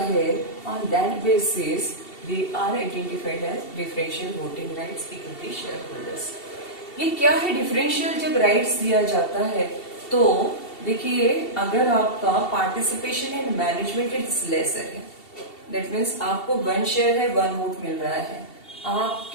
on that basis they are identified as differential voting rights equity share holders. ये क्या है, डिफरेंशियल जब राइट्स दिया जाता है तो देखिए अगर आपका participation in management is lesser है, दैट मीन्स आपको 1 शेयर है 1 वोट मिल रहा है,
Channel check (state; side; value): late; right; 2.7 ms